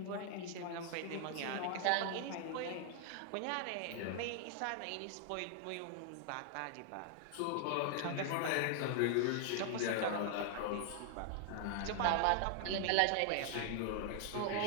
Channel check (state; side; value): different; both; correlation 0.00